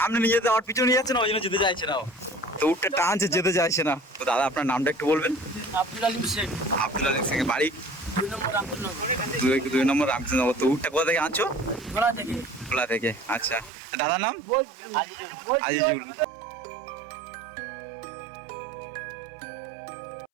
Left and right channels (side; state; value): left; drops out; at 13.7 s